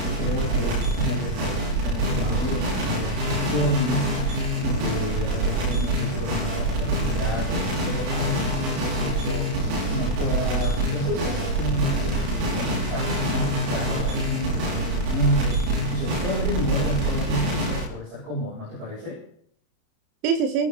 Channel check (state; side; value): late; left; 32 ms